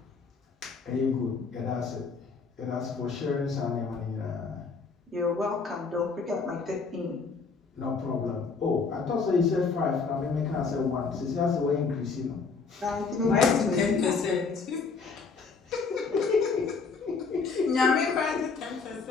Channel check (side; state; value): right; quieter; 4.8 dB